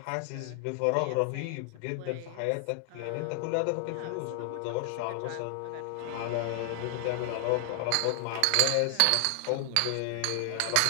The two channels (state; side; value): different; both; correlation 0.00